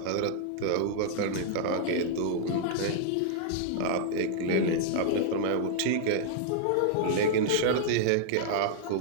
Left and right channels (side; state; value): both; different; correlation -0.01